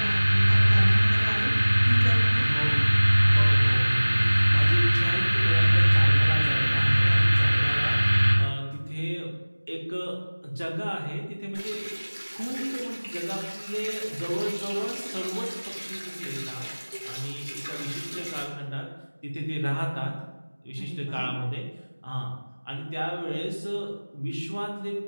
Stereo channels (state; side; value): inverted; both; correlation -1.00